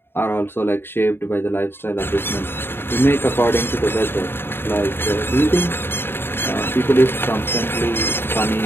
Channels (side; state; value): right; late; 0.11 ms